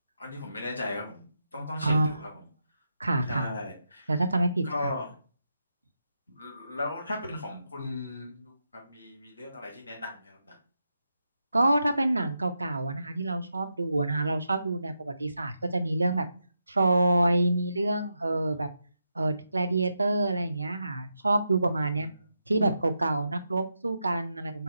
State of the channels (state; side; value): inverted; both; correlation -0.85